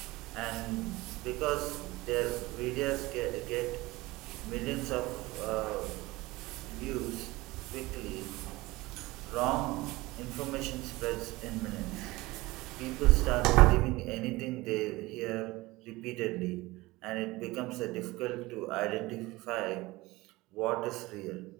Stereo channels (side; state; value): left; quieter; 20.4 dB